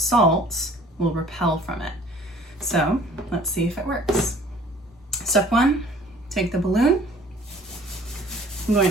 will repel from it. So let's see if it works. Step 1, take the balloon. I'm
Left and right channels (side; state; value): both; normal; correlation 0.52